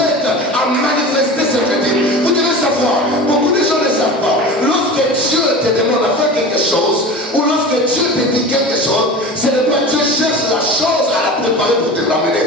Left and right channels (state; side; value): normal; both; correlation 0.33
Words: à manifester ce que dit. Vous devez savoir, beaucoup de gens ne savent pas. Lorsque Dieu te demande à faire quelque chose, ou lorsque Dieu te dit quelque chose, ce n'est pas Dieu cherche la chose à la préparer pour te